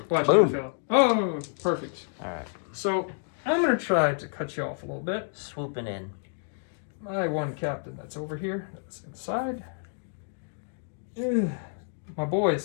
Watch Boom. me fail. Oh, perfect. Alright. So I'm going to try to cut you off a little bit. Swooping in. My one captain that's over here, that's inside. Ugh, my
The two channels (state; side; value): silent; right; digital silence